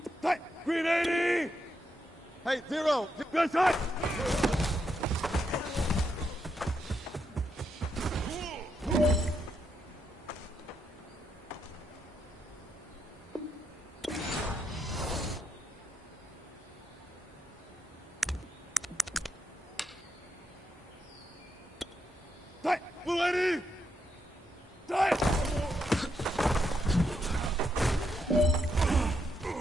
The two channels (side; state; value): both; normal; correlation 0.81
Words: Hey, 0. Good shot.